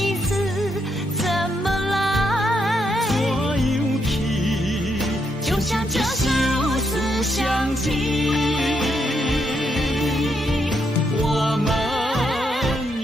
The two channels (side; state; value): both; normal; correlation 0.78